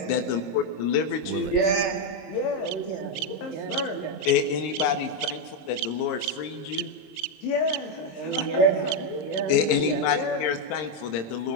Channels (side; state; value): right; late; 26 ms